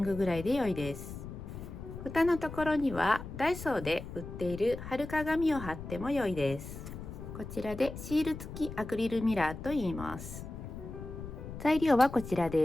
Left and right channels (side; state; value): left; noise; rumble, 10 dB below the sound